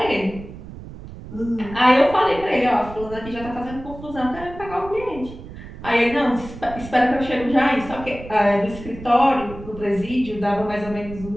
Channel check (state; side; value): noise; right; rumble, 14 dB below the sound